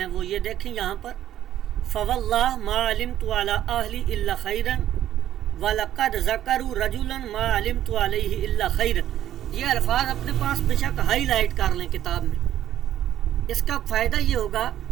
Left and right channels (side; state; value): left; quieter; 11.9 dB